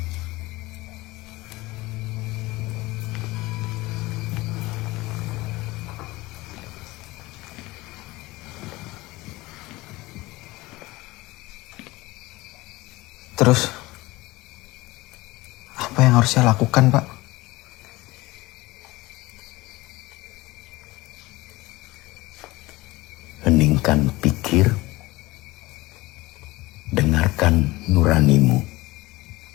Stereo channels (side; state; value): right; quieter; 20.3 dB